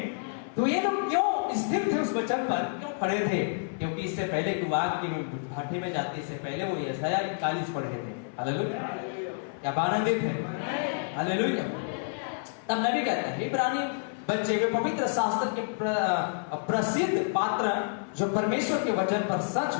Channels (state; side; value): silent; right; 57 dB below the other